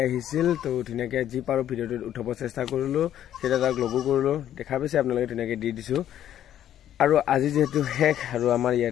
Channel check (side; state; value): right; quieter; 11.1 dB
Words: আহিছিল তো ধুনীয়াকৈ যি পাৰোঁ ভিডিঅ'টো উঠাব চেষ্টা কৰিলোঁ সেইটা তাক লগো কৰিলোঁ দেখা পাইছে আপোনালোকে ধুনীয়াকৈ দি দিছোঁ আৰু আজি যেহেতু শেষ আৰু আমাৰ